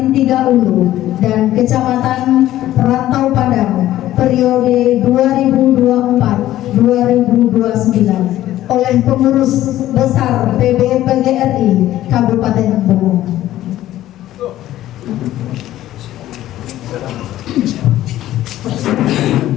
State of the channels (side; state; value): right; quieter; 13.9 dB